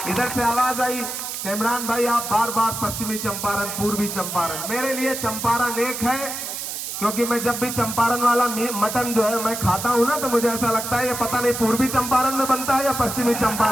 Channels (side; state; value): right; noise; hiss, 6 dB below the sound